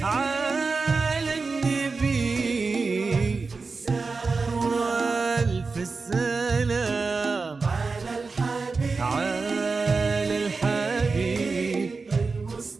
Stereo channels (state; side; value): quieter; left; 4.3 dB